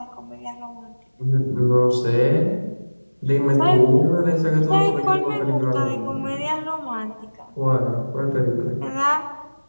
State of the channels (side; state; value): both; inverted; correlation -1.00